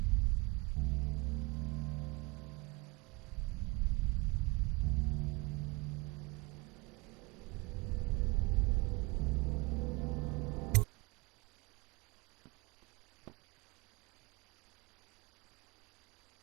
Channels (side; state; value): left; quieter; 25.5 dB